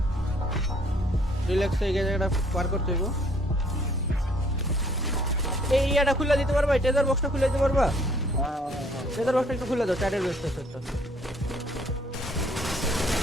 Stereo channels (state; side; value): normal; both; correlation 0.62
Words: রিল্যাক্স হয়ে গেছে এটা পার করতে হইব এই ইয়াটা খুলে দিতে পারবা টেজার বক্সটা খুলে দিতে পারবা টেজার বক্সটা একটু খুলে দাও চারের বেস্ট আছে একটা